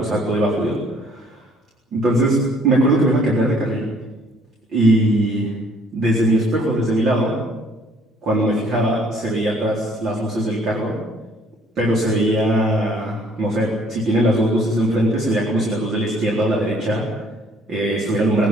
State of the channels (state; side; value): normal; both; correlation 0.61